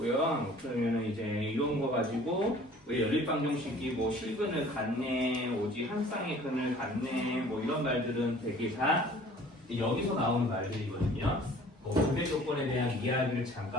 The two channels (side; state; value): both; normal; correlation 0.50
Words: 그러면은 이제 이런 거 가지고 왜 연립방정식이 뭐 실근을 갖네, 오직 한 쌍의 근을 갖네, 뭐 이런 말들은 되게 다 여기서 나오는 말들이거든요. 뭐 분배 조건에 대한 이야기를